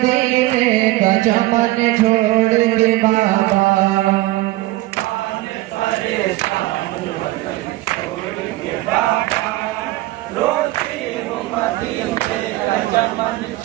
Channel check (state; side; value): quieter; left; 18.3 dB